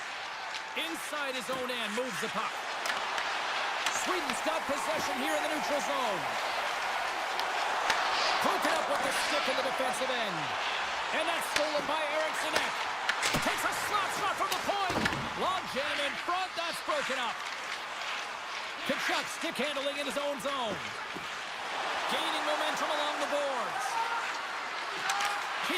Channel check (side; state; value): both; identical; correlation 1.00